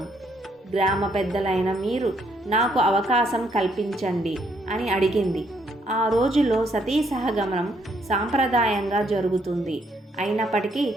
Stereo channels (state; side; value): normal; both; correlation 0.71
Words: గ్రామ పెద్దలైన మీరు నాకు అవకాశం కల్పించండి అని అడిగింది. ఆ రోజుల్లో సతీ సహగమనం సాంప్రదాయంగా జరుగుతుంది. అయినప్పటికీ